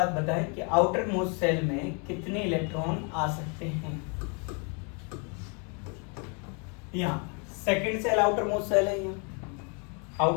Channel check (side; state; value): right; quieter; 36.0 dB